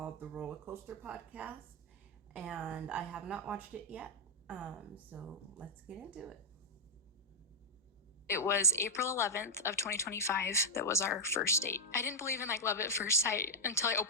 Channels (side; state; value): both; normal; correlation -0.04